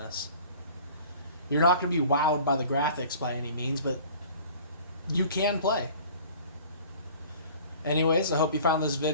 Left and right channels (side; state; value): both; inverted; correlation -0.46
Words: You're not going to be wowed by the graphics by any means, but you can play. Anyways, I hope you found this